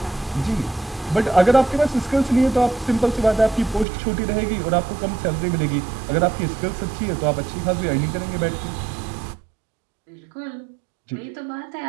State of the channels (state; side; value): drops out; left; at 3.9 s